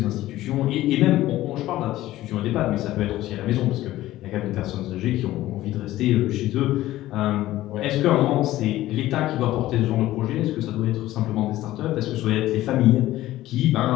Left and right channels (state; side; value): quieter; right; 15.4 dB